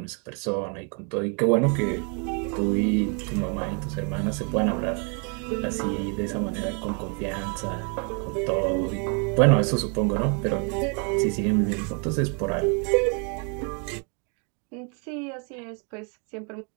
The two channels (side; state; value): left; quieter; 37.7 dB